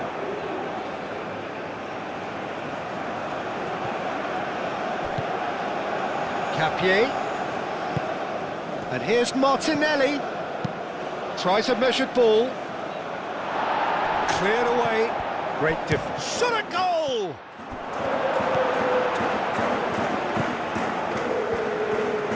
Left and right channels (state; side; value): identical; both; correlation 1.00